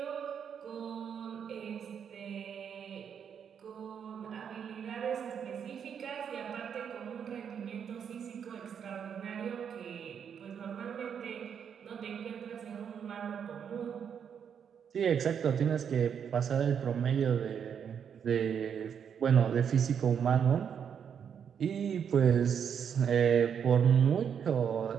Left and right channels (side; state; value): left; quieter; 7.7 dB